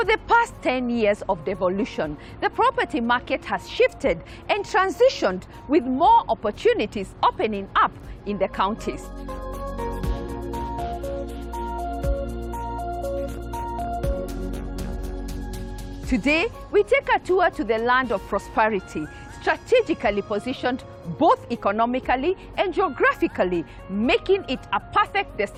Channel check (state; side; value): identical; both; correlation 1.00